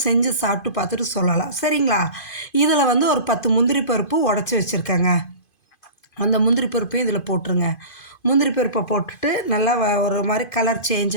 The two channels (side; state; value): right; late; 2.5 ms